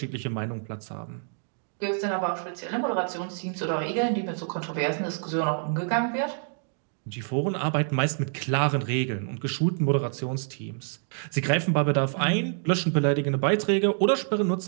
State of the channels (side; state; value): left; silent; 60 dB below the other